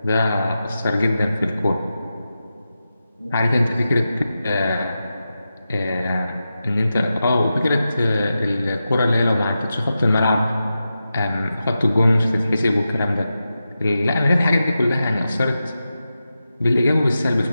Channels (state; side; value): inverted; both; correlation -0.91